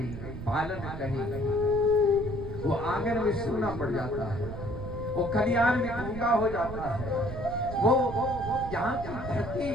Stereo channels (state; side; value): noise; right; rumble, 9 dB below the sound